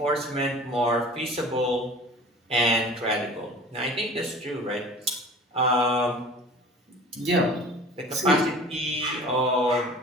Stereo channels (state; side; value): normal; both; correlation 0.42